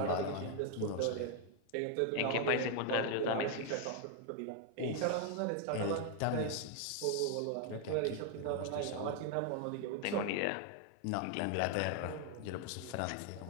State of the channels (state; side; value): different; both; correlation 0.00